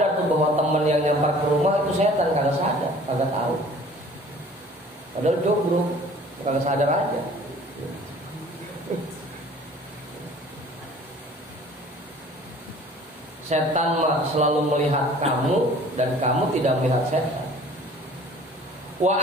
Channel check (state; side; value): normal; both; correlation 0.50